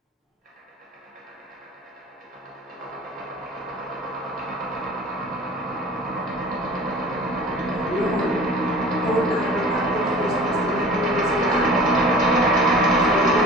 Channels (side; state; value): both; normal; correlation 0.43